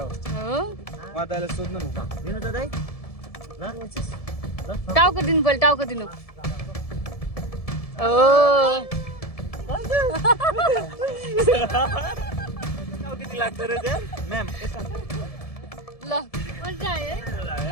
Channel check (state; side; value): late; right; 1.7 ms